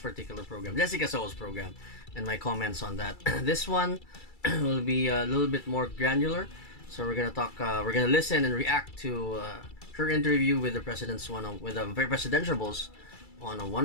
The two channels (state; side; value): late; right; 2.3 ms